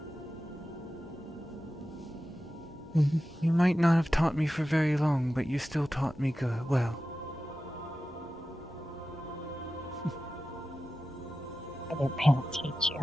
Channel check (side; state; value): both; normal; correlation 0.93